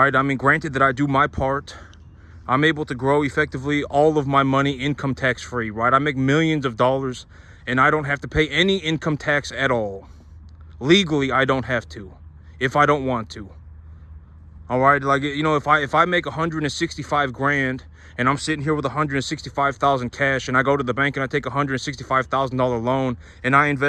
I mean, granted that I do my part, I'm able to grow effectively all of my money income tax free, right? I make millions of dollars and I don't have to pay any income tax at all. Legally, I don't have to, if I don't want to. All right, like, if I make 165 grand and I'm sitting here with 165,000 cash, and I go to the bank and I take $165,000 loan and I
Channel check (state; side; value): identical; both; correlation 1.00